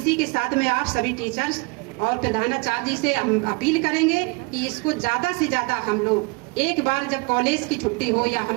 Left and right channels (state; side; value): quieter; left; 28.9 dB